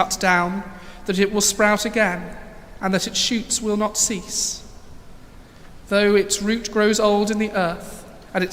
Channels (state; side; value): identical; both; correlation 1.00